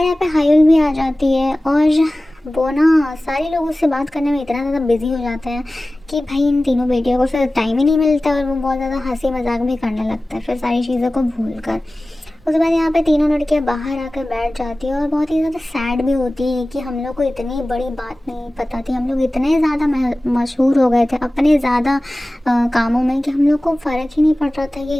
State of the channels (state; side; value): normal; both; correlation 0.97